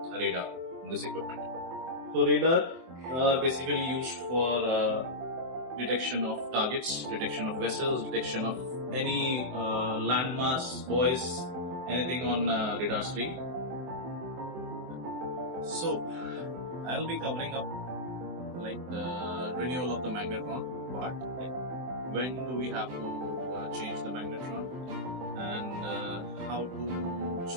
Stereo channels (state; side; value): late; left; 24 ms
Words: radar in this equipment. So radar are basically used for detection of targets, detection of vessels, detection of any landmass, buoys, anything on radar screen. So I'll be covering up like the renewal of the magnetron part, like when do we have to change the magnetron and how to